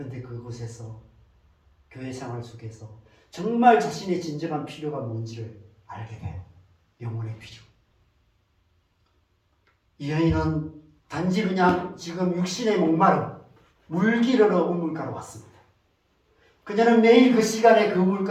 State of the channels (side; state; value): both; identical; correlation 1.00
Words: 그곳에서 교회 생활 속에서 정말 자신의 진정한 필요가 뭔지를 알게 돼요. 영혼의 필요. 이 여인은 단지 그냥 지금 육신의 목마름, 물 기르러 우물가로 왔습니다. 그녀는 매일 그 시간에 그